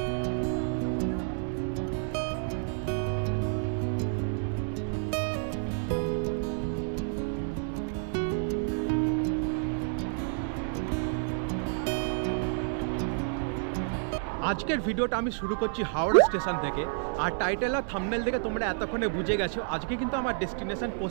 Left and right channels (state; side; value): silent; left; 58 dB below the other